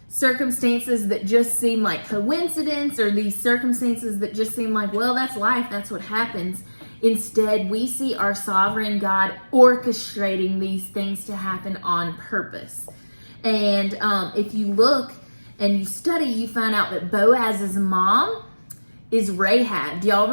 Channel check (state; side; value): inverted; both; correlation -1.00